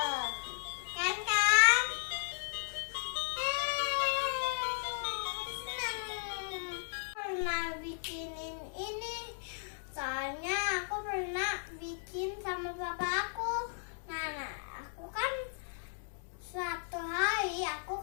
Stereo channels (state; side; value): silent; right; 54 dB below the other